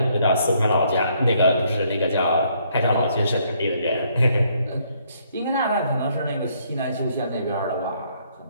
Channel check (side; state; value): both; inverted; correlation -0.69